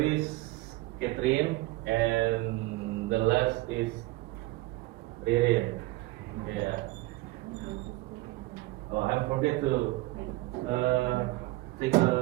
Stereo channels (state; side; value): quieter; left; 19.6 dB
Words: Catherine, and the last is Ririn. Yeah. Oh, I forget to take